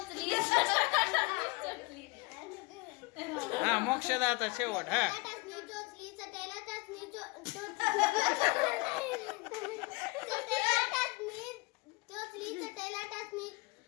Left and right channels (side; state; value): right; quieter; 26.7 dB